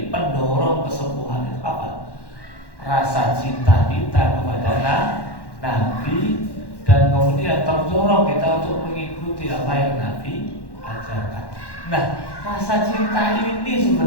pendorong kesembuhan itu apa? Rasa cinta kita kepada Nabi, dan kemudian terdorong kita untuk mengikuti apa yang Nabi ajarkan. Nah, rasa cinta ini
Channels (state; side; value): late; right; 1.1 ms